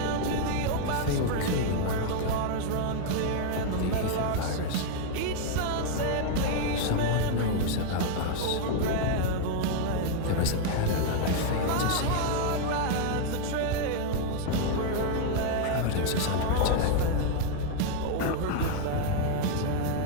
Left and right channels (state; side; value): different; both; correlation 0.00